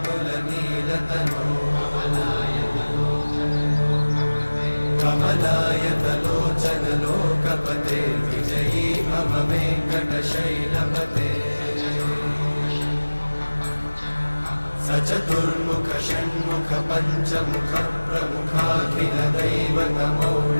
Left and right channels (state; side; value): inverted; both; correlation -1.00